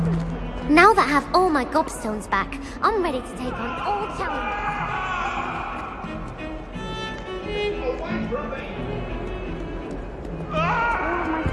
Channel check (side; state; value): both; identical; correlation 1.00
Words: Now that I have all my gobstones back, I'm ready to take on all challenges.